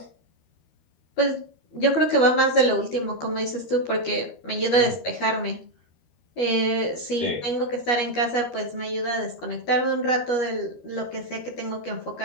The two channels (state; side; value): late; right; 13 ms